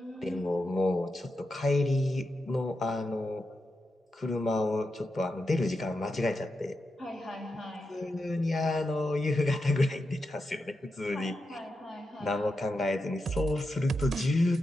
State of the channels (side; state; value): both; normal; correlation 0.88